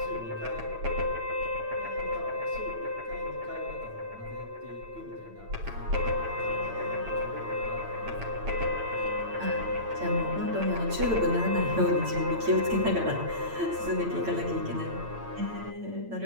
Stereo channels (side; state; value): left; late; 8.9 ms